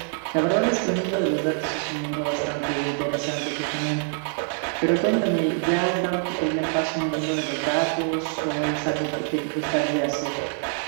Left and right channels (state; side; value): silent; left; 61 dB below the other